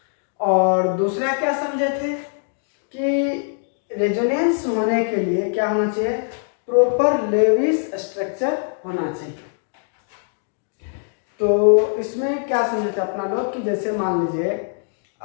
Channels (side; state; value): right; silent; digital silence